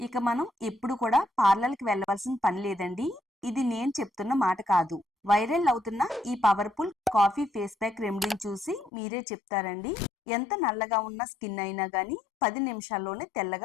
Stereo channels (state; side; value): drops out; right; at 8.9 s